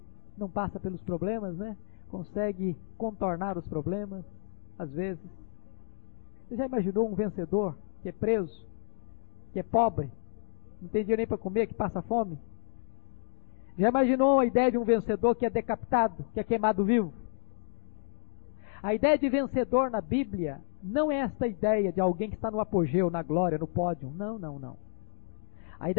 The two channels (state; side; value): silent; right; digital silence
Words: não passa pelos problemas, né? Consegue contornar os problemas, às vezes. Você já imaginou um vencedor que é preso, que é pobre, não tem dinheiro nem para comer, que passa fome? Já imaginou a ideia de um vencedor que é decapitado, que é queimado vivo? A ideia de vencedor na Bíblia não é esta ideia de alguém que está no apogeu, na glória, no pódio. Não, não, não. A